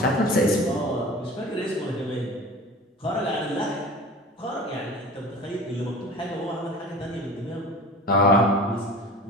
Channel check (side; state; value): both; normal; correlation 0.38